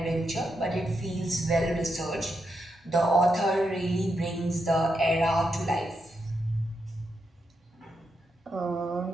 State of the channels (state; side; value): normal; both; correlation 0.83